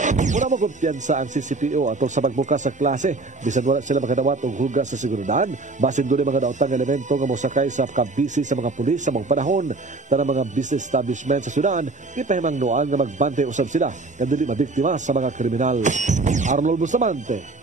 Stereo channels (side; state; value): left; quieter; 3.5 dB